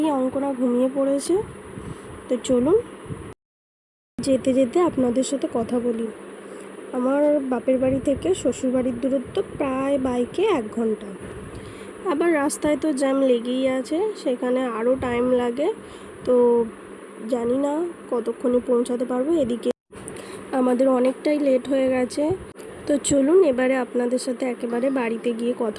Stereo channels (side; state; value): both; identical; correlation 1.00